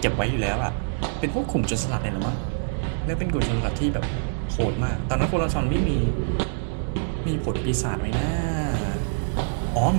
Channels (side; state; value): left; silent; digital silence